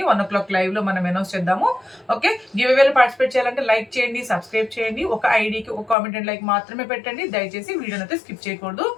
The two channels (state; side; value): drops out; right; at 6.0 s